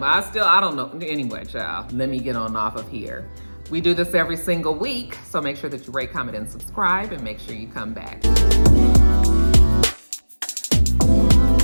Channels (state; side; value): inverted; both; correlation -1.00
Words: I don't know. Anyway, child, let me get on off of here. We do this every single week, so make sure that you rate, comment, and subscribe, and make sure you come back.